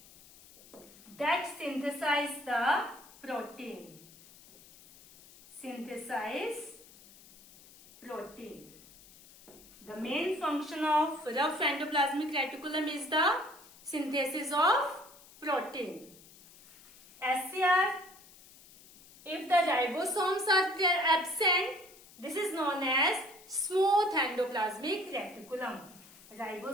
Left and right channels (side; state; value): left; noise; hiss, 22 dB below the sound